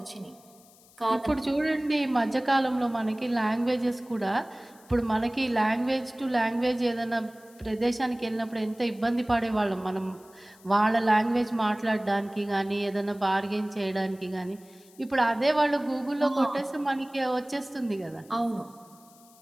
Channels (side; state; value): left; noise; hiss, 26 dB below the sound